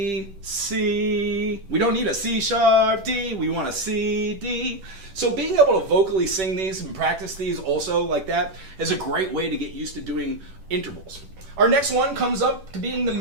C. We don't need a C sharp, D. We want a C, D. So being able to vocally sing these and practice these also like that is a great way to get used to doing intervals. Our next one comes up to being the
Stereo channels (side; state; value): left; late; 10 ms